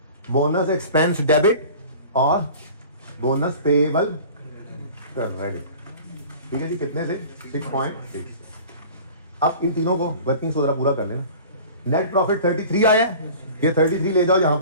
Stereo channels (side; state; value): both; inverted; correlation -0.42